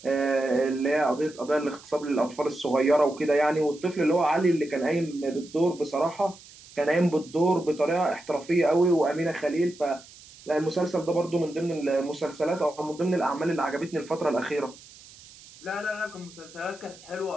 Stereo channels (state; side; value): noise; right; hiss, 21 dB below the sound